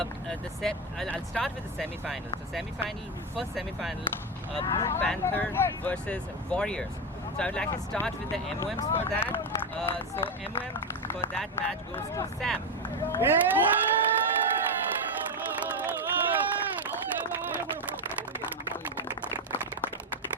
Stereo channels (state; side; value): normal; both; correlation 0.10